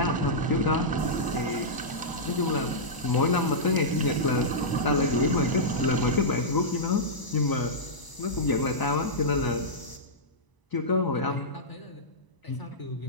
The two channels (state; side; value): late; right; 1.0 ms